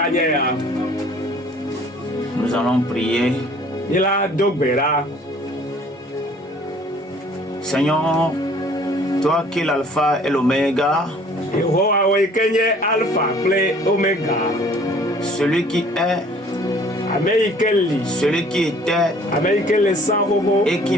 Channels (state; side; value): normal; both; correlation 0.54